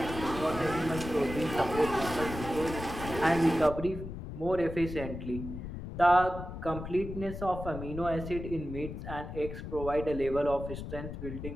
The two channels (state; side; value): noise; left; rumble, 8 dB below the sound